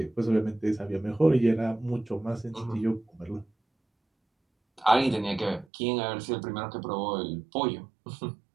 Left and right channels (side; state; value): left; drops out; at 5.7 s